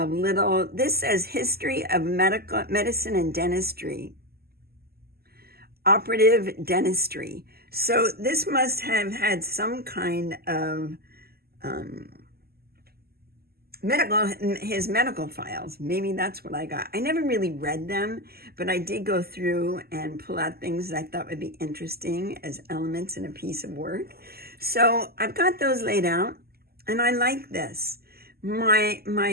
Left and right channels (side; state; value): left; late; 0.45 ms